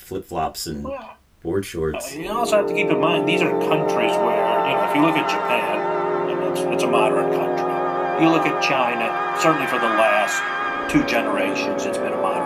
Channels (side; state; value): both; identical; correlation 1.00